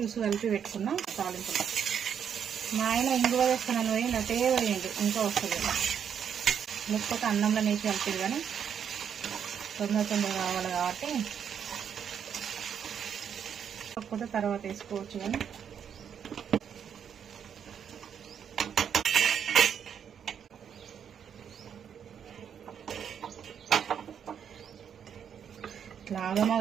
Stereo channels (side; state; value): left; quieter; 8.0 dB